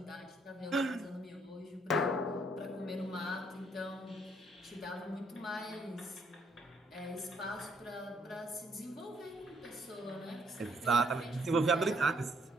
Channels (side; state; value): both; normal; correlation 0.69